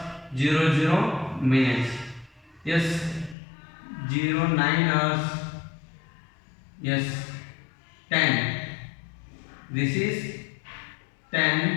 00 minutes. Yes. 09 hours. Yes. 10. This is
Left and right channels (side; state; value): right; drops out; at 3.4 s